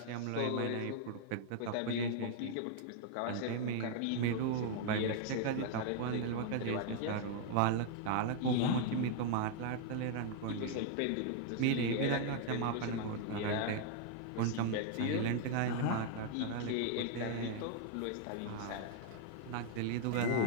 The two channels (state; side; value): different; both; correlation 0.00